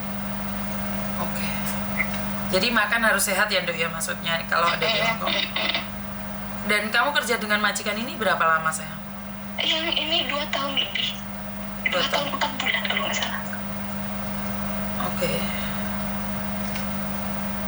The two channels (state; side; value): identical; both; correlation 1.00